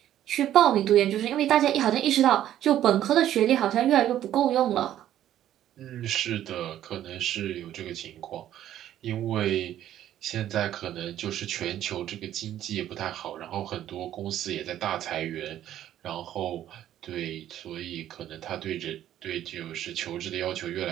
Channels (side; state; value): left; quieter; 11.9 dB